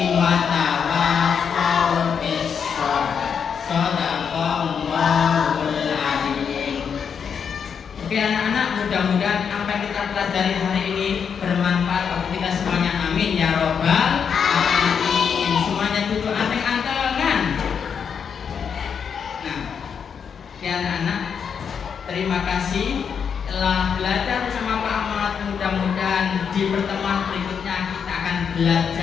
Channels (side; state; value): right; quieter; 6.9 dB